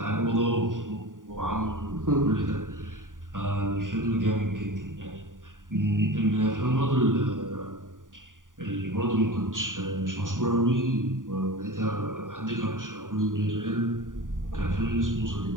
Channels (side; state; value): left; late; 0.89 ms